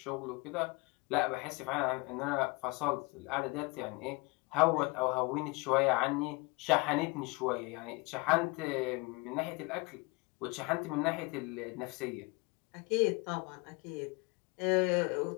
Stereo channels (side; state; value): right; quieter; 27.4 dB